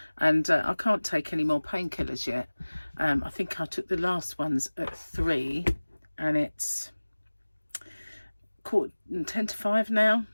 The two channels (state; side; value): inverted; both; correlation -1.00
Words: and I can't take any more painkillers yet. I think I took the last ones at 3, and it's 10 to 5 now,